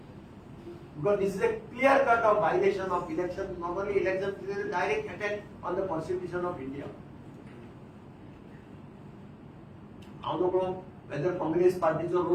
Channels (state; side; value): identical; both; correlation 1.00